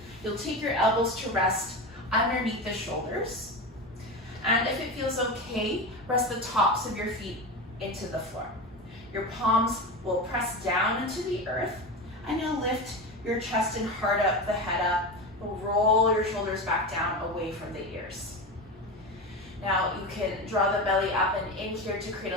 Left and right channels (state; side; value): normal; both; correlation 0.23